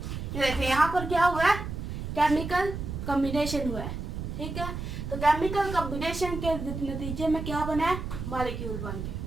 देखें यहाँ पर क्या हुआ है, केमिकल कॉम्बिनेशन हुआ है। ठीक है, तो केमिकल कॉम्बिनेशन के नतीजे में क्या बना है, मॉलिक्यूल बन गए।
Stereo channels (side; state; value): right; noise; rumble, 6 dB below the sound